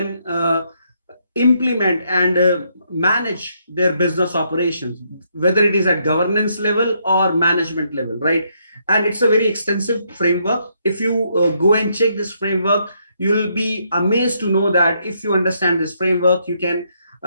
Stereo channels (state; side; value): inverted; both; correlation -0.75